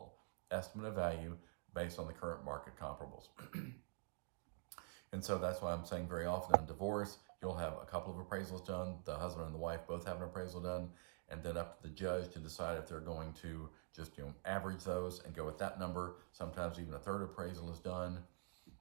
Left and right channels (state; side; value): silent; left; digital silence